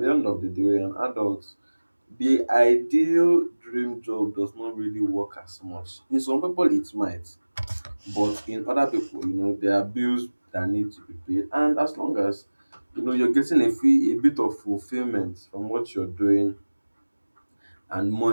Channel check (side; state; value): both; inverted; correlation -1.00